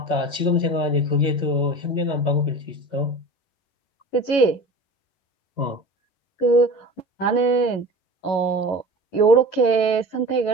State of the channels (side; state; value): right; late; 11 ms